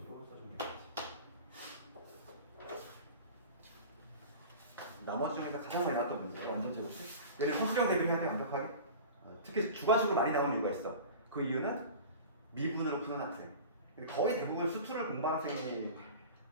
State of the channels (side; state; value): both; inverted; correlation -0.35